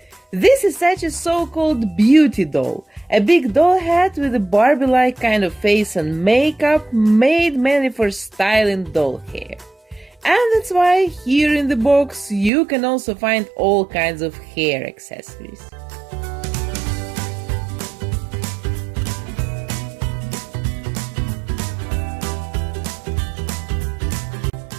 This is such a so-called beauty doll, a big doll hat with a Barbie-like kind of face and makeup made mainly for styling doll hair. And that's why here in the box you can also find all kinds of hair accessories.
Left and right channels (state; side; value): drops out; left; at 12.5 s